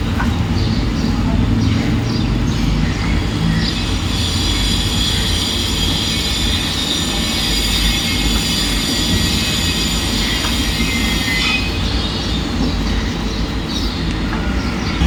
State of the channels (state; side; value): identical; both; correlation 1.00